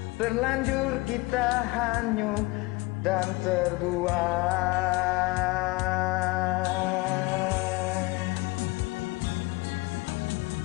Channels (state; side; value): quieter; right; 23.5 dB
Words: terlanjur kita hanyut dan terbuai.